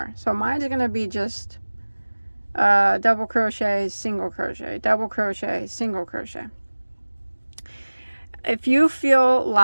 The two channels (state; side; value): inverted; both; correlation -1.00